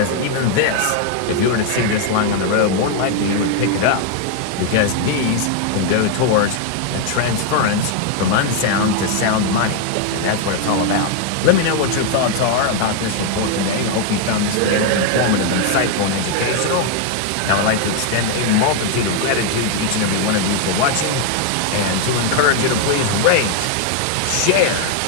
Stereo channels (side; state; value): both; different; correlation 0.01